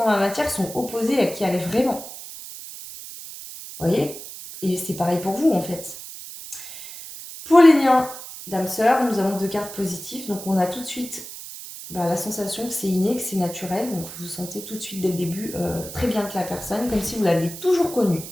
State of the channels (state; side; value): noise; right; hiss, 12 dB below the sound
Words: dans la matière sont opposés à qui elle est vraiment. Vous voyez? Et c'est pareil pour vous en fait. Pour les liens d'âme-sœur, nous avons deux cartes positives. Donc on a tout de suite la sensation que c'est inné, que c'est naturel. Donc vous sentez tout de suite dès le début très bien que la personne, comme si vous l'aviez toujours connue.